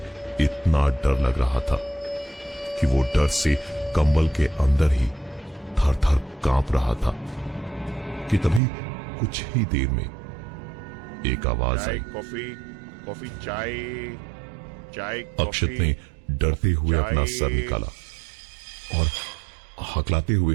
इतना डर लग रहा था कि वो डर से कंबल के अंदर ही थर थर कांप रहा था कि तभी कुछ ही देर में एक आवाज आई। कॉफी, चाय। अक्षत ने डरते हुए अपना सर निकाला और हकलाते हुए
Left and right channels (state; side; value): drops out; left; at 8.6 s